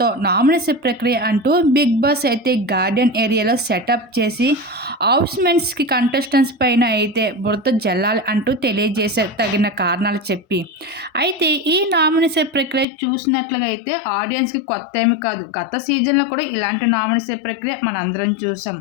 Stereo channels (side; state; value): right; drops out; at 12.9 s